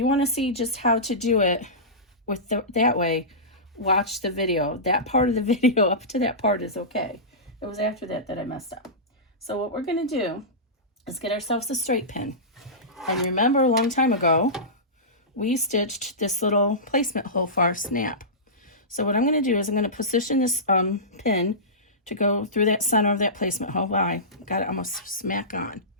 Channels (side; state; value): both; normal; correlation -0.19